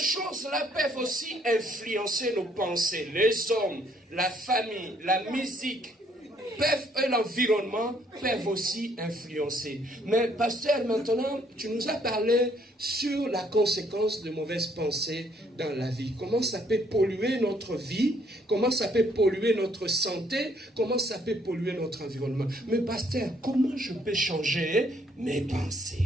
peuvent aussi influencer nos pensées. Les hommes, la famille, la musique, et l'environnement peuvent aussi influencer. Mais pasteur, maintenant, tu nous as parlé sur la conséquence de mauvaises pensées dans la vie. Comment ça peut polluer notre vie, comment ça peut polluer notre santé, comment ça peut polluer notre environnement. Mais pasteur, comment je peux changer mes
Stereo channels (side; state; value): both; normal; correlation 0.67